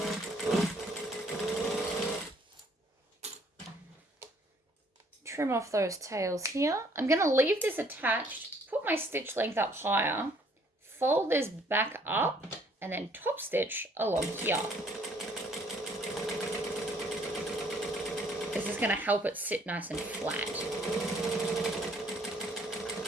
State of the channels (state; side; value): normal; both; correlation 0.62